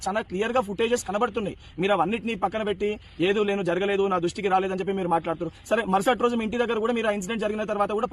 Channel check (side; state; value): both; identical; correlation 1.00